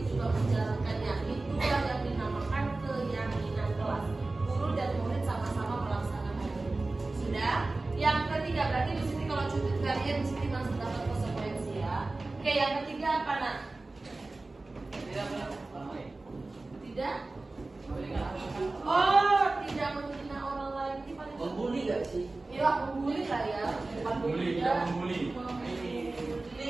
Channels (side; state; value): left; quieter; 3.2 dB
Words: juga menjalankannya. Itulah yang dinamakan keyakinan kelas. Guru dan murid sama-sama melaksanakannya. Sudah? Yang ketiga berarti Miss Siti kalau cubit kalian Miss Siti langsung dapat konsekuensi ya. Oke, yang ketiga apa nak? Tidak? Oh, tidak menghina orang lain ini paling Membuli gak sih? ya, membuli lah ya. Membuli, tidak membuli.